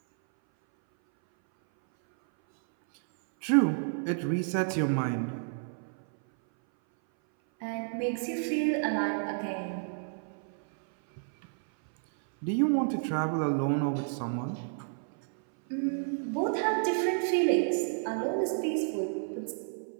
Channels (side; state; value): left; silent; 58 dB below the other